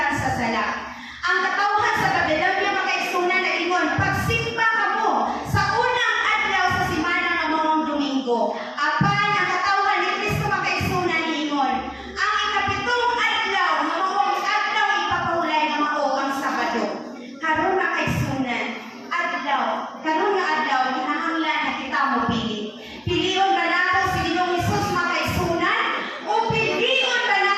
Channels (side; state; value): both; identical; correlation 1.00